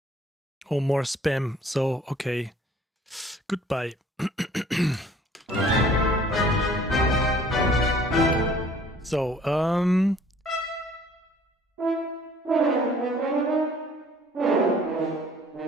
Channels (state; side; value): normal; both; correlation 0.55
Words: Oh, more spam. So, okay. Goodbye. So,